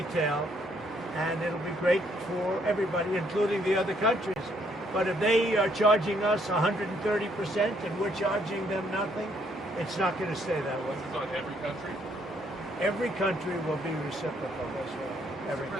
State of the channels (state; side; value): normal; both; correlation 0.69